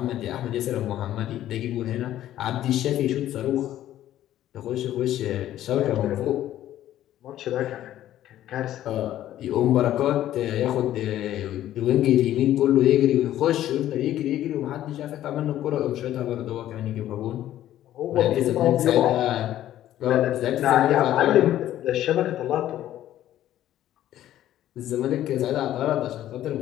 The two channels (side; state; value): right; quieter; 12.8 dB